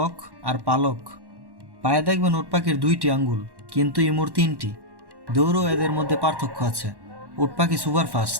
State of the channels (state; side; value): late; left; 1.1 ms